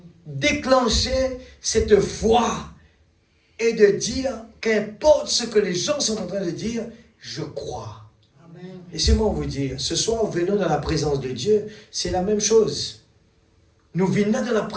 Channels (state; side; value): identical; both; correlation 1.00